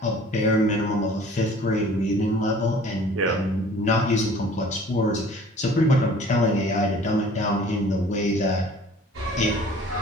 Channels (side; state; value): both; normal; correlation 0.50